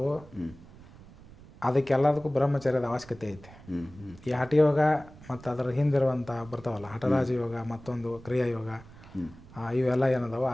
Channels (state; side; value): noise; right; rumble, 20 dB below the sound